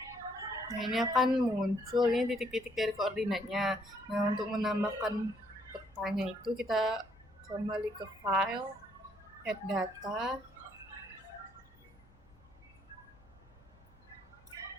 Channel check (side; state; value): both; normal; correlation 0.69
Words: Nah, ini akan muncul ini titik-titik dari koordinatnya. Nah, untuk menambahkan petanya itu kita kembali ke file, add data,